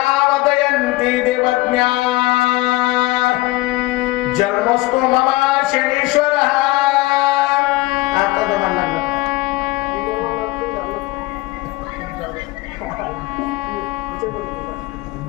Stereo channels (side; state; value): right; quieter; 19.6 dB